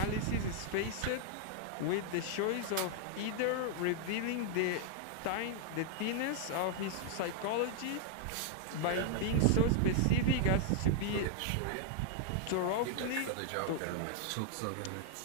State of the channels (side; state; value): both; different; correlation -0.01